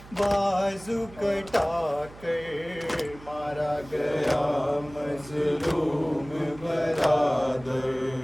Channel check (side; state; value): right; noise; hum, 19 dB below the sound